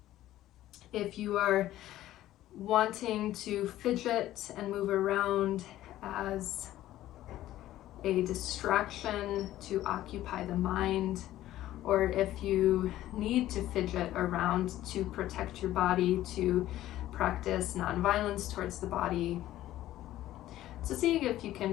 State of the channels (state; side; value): quieter; right; 14.1 dB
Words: if you are wanting to fidget and move around as a distraction to occupy the mind, or if you need to fidget around to protect your body, to practice nonviolence towards the body. So see if you